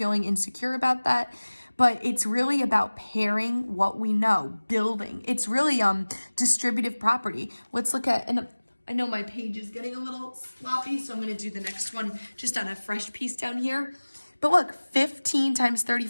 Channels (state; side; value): inverted; both; correlation -1.00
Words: insecure about that, but it's really about pairing what we know, building. It's really distributive property. Let's look at, and I know my page is getting a little sloppy, so I'm going to do the next one just on a fresh piece down here. But look, 15 times